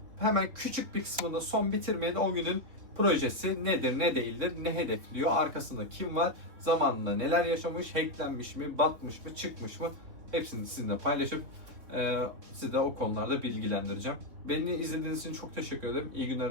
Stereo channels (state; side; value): late; left; 3.6 ms